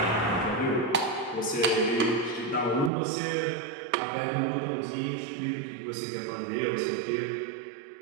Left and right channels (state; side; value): drops out; left; at 2.9 s